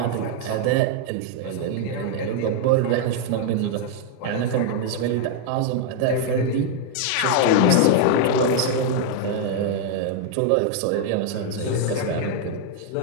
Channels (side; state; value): both; different; correlation 0.00